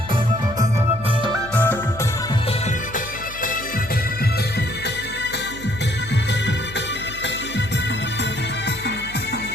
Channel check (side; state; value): left; noise; hum, 16 dB below the sound